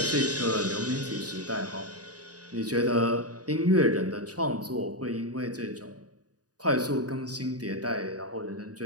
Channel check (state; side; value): late; left; 0.68 ms